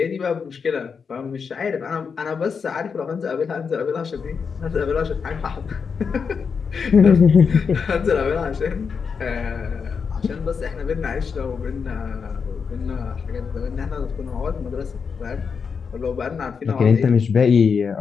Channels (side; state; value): right; quieter; 5.9 dB